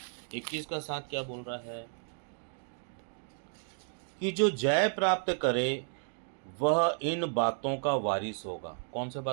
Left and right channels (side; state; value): left; silent; 56 dB below the other